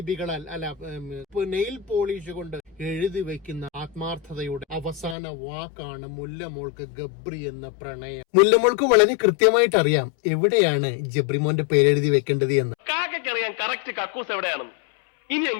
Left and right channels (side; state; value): right; drops out; at 5.2 s